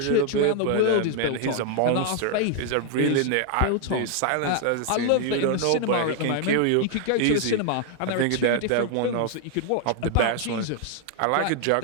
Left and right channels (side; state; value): both; different; correlation 0.00